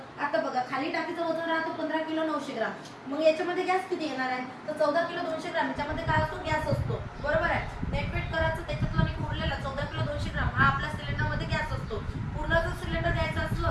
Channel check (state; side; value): identical; both; correlation 1.00